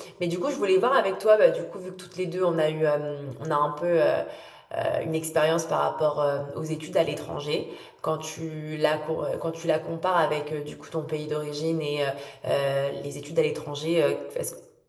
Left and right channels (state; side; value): identical; both; correlation 1.00